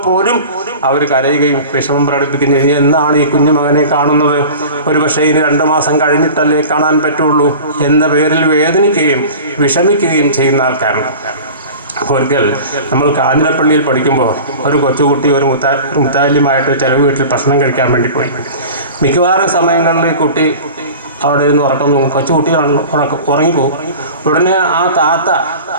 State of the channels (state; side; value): inverted; both; correlation -0.37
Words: പോലും അവർ കരയുകയും വിഷമം പ്രകടിപ്പിക്കുകയും ചെയ്യും. എന്നാണ് ഈ കുഞ്ഞു മകനെ കാണുന്നത്? ഒരു പക്ഷേ ഇനി 2 മാസം കഴിഞ്ഞിട്ടല്ലേ കാണാൻ പറ്റുള്ളൂ എന്ന പേരിൽ വേദനിക്കുകയും വിഷമിക്കുകയും ചെയ്യുന്ന ആൾക്കാരുണ്ട്. ഒരിക്കൽ നമ്മൾ കാഞ്ഞിരപ്പള്ളിയിൽ പഠിക്കുമ്പോൾ ഒരു കൊച്ചുകുട്ടി ഒരു മുത്താലിമായിട്ട് ചില വീട്ടിൽ ഭക്ഷണം കഴിക്കാൻ വേണ്ടി പോയി. മിക്കവാറും സമയങ്ങളിൽ കുട്ടി അവിടെ ഇരുന്ന് കൊച്ചുകുട്ടിയാണല്ലോ, ഉറങ്ങിപ്പോകും. ഉടനെ ആ താത്ത